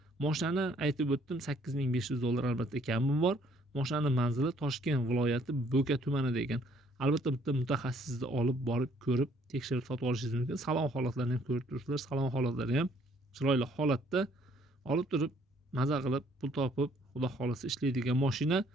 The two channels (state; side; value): normal; both; correlation 0.63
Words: Mashinani aytib o'tdim, $8500 albatta kami bor. Mashinaning manzili Toshkent viloyati Bo'ka tumanida ekan. Albatta bitta mutaxassisni olib borib ko'rib, tekshirib sotib olishingiz mumkin. Salon holatlarini ham ko'rib turibsizlar. Salon holatlari ham chiroyli holatda. Olib turib, maza qilib, pul topib, xudo xolasa ishlaydigan mashina.